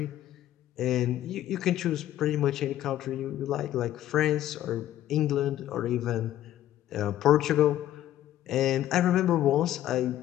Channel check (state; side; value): quieter; right; 12.9 dB